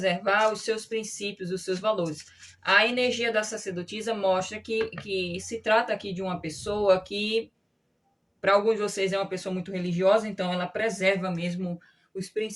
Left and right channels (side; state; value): both; identical; correlation 1.00